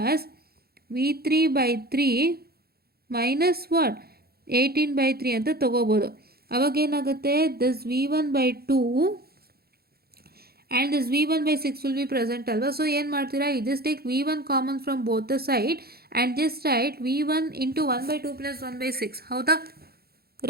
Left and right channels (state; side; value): late; left; 0.45 ms